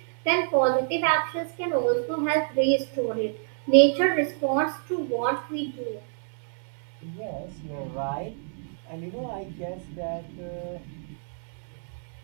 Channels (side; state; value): left; silent; 60 dB below the other